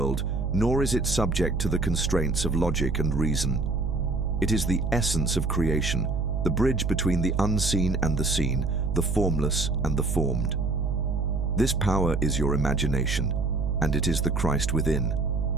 nor is it subject to the constraints of logic and reason. It is the essence of creation, the bridge between the unseen and the seen, the formless and the formed. This power is your imagination, and it is the Christ within,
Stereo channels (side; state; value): right; noise; hum, 2 dB below the sound